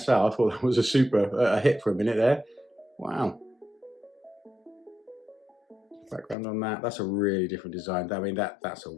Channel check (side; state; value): right; drops out; at 6.4 s